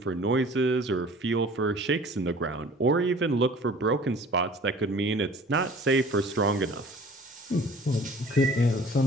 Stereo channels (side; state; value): both; normal; correlation 0.48